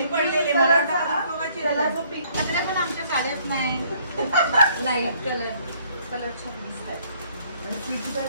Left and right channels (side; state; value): both; inverted; correlation -0.63